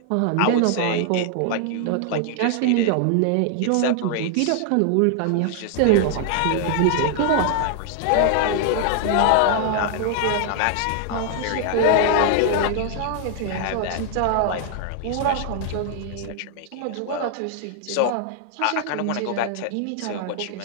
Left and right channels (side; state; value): both; different; correlation 0.00